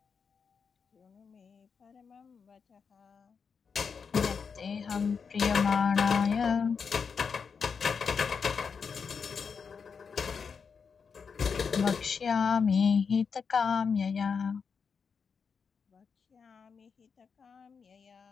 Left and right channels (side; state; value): right; quieter; 5.9 dB